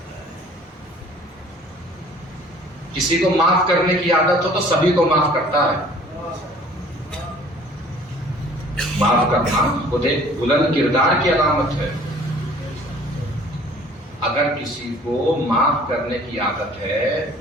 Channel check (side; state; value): both; normal; correlation 0.52